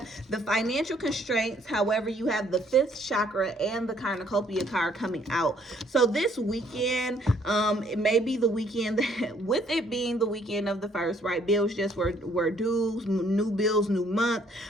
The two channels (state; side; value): normal; both; correlation 0.64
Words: the financial constraints. However, you have the fifth chakra and the cornucopia card coming out. So this weekend, it may be the weekend that, with it being the weekend of the first, right? Bills just were due, new bills, new month.